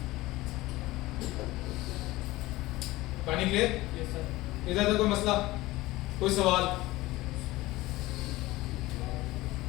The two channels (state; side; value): quieter; right; 18.8 dB